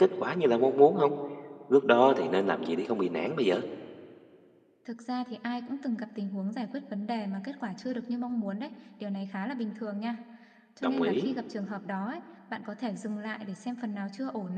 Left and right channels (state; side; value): identical; both; correlation 1.00